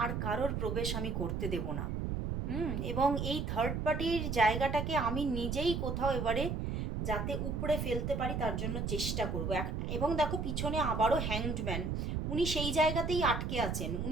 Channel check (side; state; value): right; noise; rumble, 2 dB below the sound